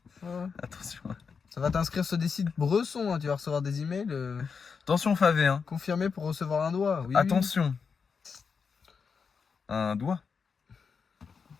Ouais. Attention. Ça va t'inscrire sur des sites Bresson. Hein. Tu vas recevoir des emails Attention, Favé. Hein. confirmés pour recevoir un doigt. Oui, Attention. Un doigt.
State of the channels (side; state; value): right; quieter; 5.7 dB